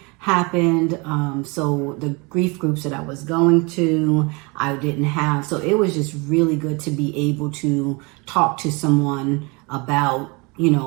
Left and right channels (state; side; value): quieter; left; 28.5 dB